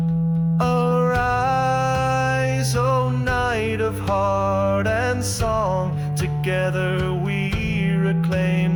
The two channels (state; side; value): identical; both; correlation 1.00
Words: Arise, O night of heart and song, together we